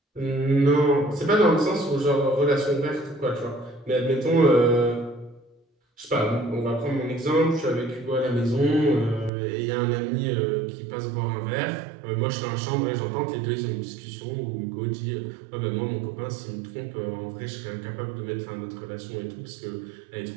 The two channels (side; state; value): left; drops out; at 9.3 s